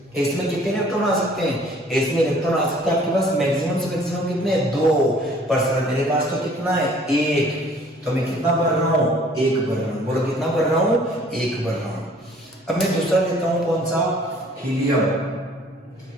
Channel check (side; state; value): both; normal; correlation 0.55